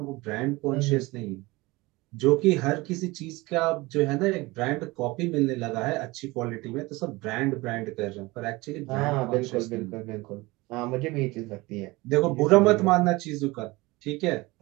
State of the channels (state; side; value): quieter; left; 22.1 dB